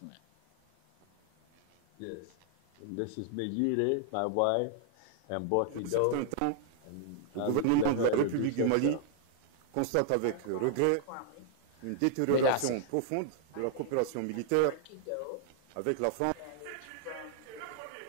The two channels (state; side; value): different; both; correlation -0.01